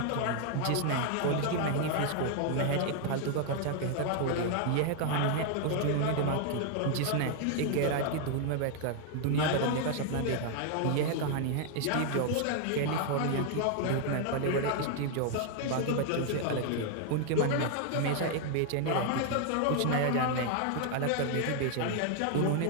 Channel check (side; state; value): both; different; correlation 0.00